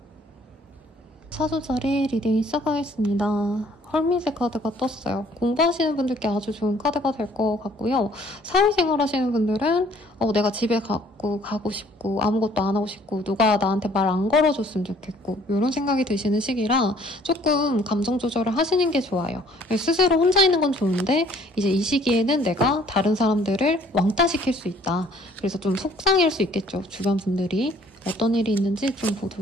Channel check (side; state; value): both; normal; correlation 0.59